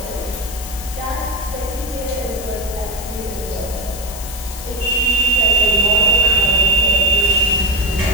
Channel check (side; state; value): left; noise; hiss, 12 dB below the sound